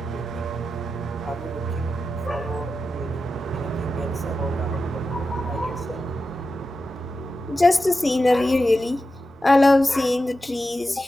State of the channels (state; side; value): normal; both; correlation 0.91